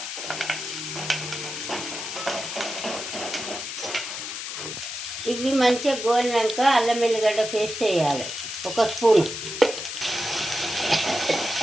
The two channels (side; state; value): left; noise; hiss, 6 dB below the sound